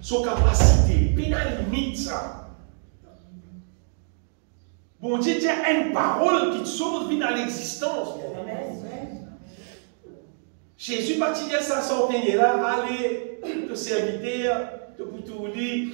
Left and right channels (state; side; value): silent; left; digital silence